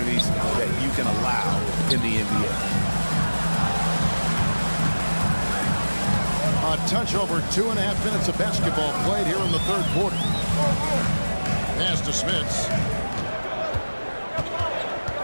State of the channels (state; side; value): inverted; both; correlation -1.00